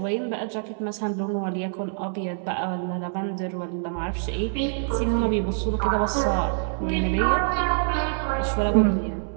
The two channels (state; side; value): silent; left; digital silence